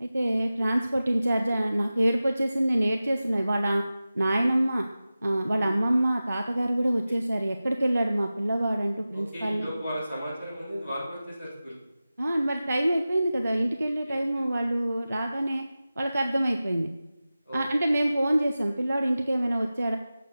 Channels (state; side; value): inverted; both; correlation -0.95